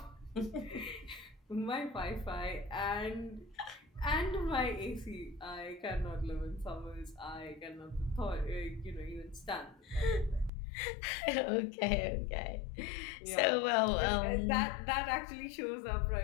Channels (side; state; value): right; drops out; at 10.5 s